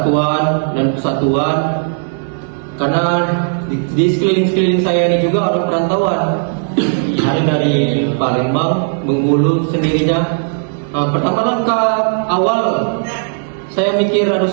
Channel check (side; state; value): left; silent; digital silence